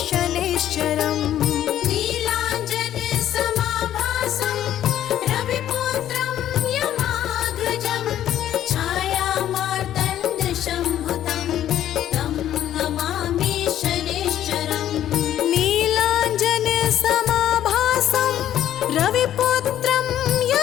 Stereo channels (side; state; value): right; quieter; 11.5 dB